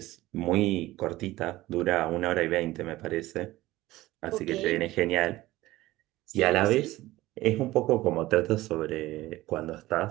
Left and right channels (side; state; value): left; quieter; 17.4 dB